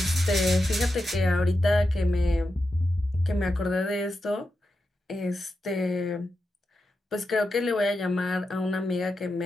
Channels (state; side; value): normal; both; correlation 0.89